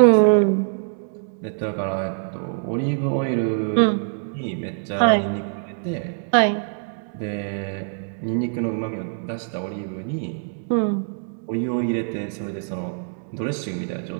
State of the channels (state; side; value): silent; left; digital silence